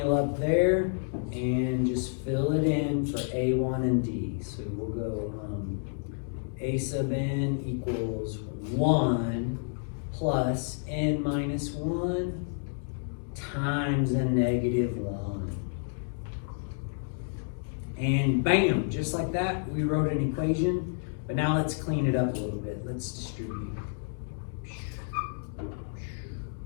up there and just fill it in for A1 and D. So we'll go A sub n equals 1 plus n minus 1 times a negative 1. And bam, just like that, we wrote an equation. But now let's clean it up a little bit. Let's distribute.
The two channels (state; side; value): silent; right; digital silence